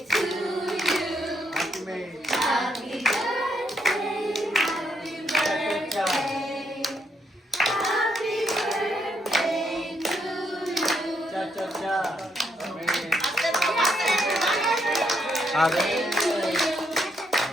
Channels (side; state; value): both; normal; correlation 0.76